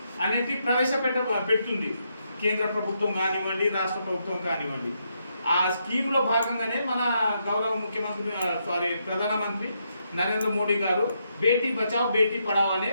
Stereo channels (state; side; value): inverted; both; correlation -0.79